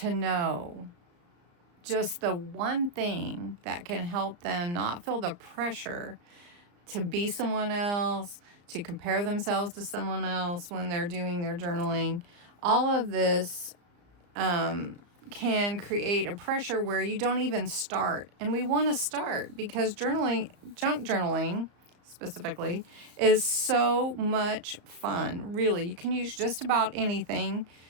know just the one thing that can help them not feel the pressure to be someone else, to compare themselves to someone else when they're doing their journaling. All of this can create a pressure where you don't even start. And we want to start because journaling, junk journaling specifically, is so much fun. Really, you can use just about anything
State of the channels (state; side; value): late; left; 34 ms